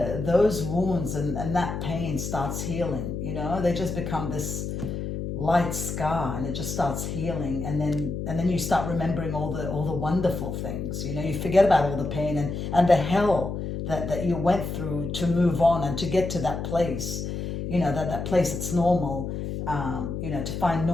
those wounds and that pain starts healing, you know, they just become this light scar, and it just starts healing, and then you start remembering all the wonderful things, you know, you forget about all the pain and the hell that you went through to move on and to get to that place, you know, that place that's normal, you know, to find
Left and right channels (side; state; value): left; noise; hum, 4 dB below the sound